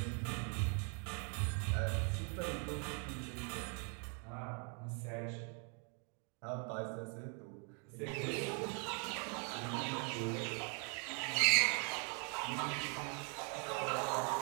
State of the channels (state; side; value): quieter; left; 36.3 dB